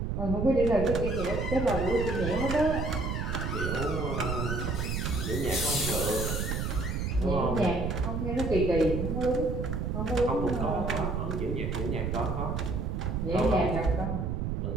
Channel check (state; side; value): noise; right; rumble, 1 dB below the sound